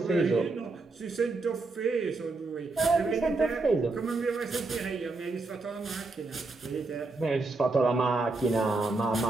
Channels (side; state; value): left; quieter; 3.5 dB